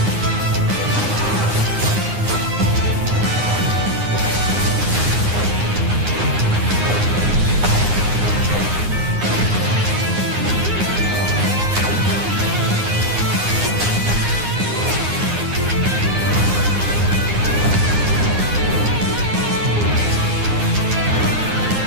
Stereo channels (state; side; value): late; left; 9.7 ms